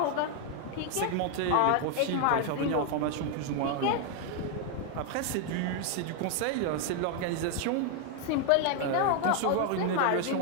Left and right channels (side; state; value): both; different; correlation 0.01